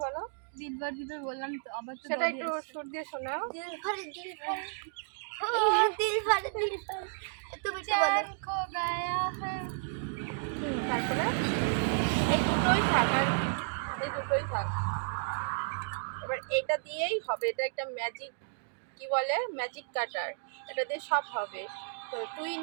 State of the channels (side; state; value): left; silent; digital silence